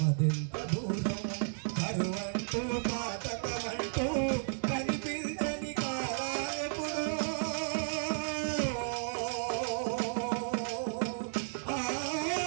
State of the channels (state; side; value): silent; left; digital silence